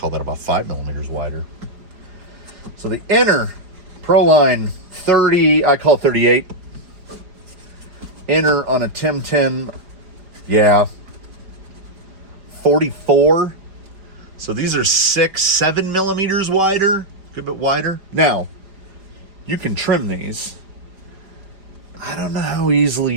that about 5 millimeters wider. So the inner Proline 30, I call it 38. Inner on a Timtin, yeah, 44. So these are 7 millimeters wider, a good bit wider. Now, you can trim these. I don't know how easily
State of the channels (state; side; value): late; left; 4.9 ms